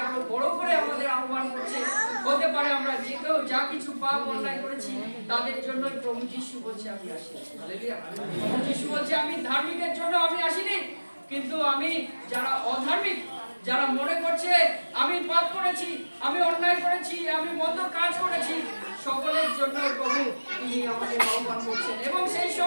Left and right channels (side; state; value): both; inverted; correlation -1.00